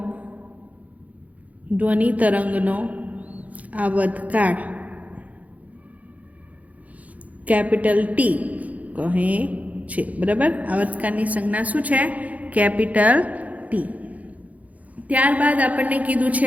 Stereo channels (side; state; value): left; late; 0.072 ms